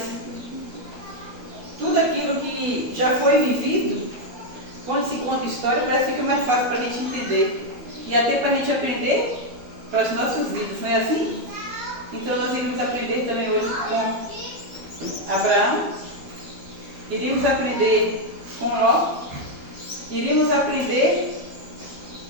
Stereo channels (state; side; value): late; left; 12 ms